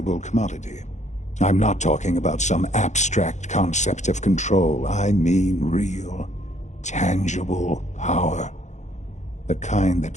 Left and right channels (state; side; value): late; right; 0.34 ms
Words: commodity. I'm not talking about some abstract concept of control. I mean real, tangible power. The kind